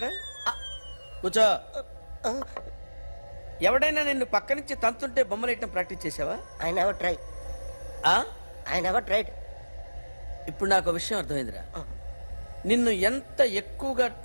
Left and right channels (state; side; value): inverted; both; correlation -1.00